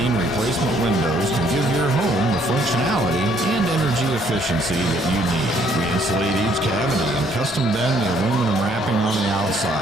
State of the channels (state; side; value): normal; both; correlation 0.66